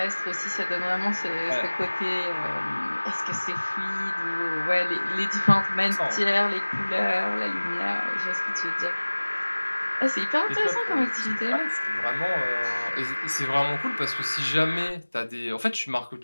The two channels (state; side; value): inverted; both; correlation -1.00